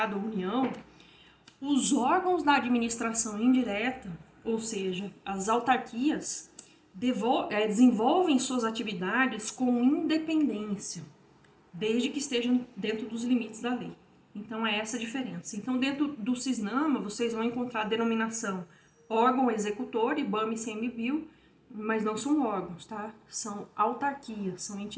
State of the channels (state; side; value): identical; both; correlation 1.00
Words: União, os órgãos da administração indireta, ou seja, as autarquias, desenvolvem suas atividades com independência, desde que estejam dentro dos limites da lei. Então é essa a diferença. Então dentro do CISNAMA vocês vão encontrar a denominação órgão executor, IBAMA e ICMBio, mas não são órgãos, tá? São autarquias, são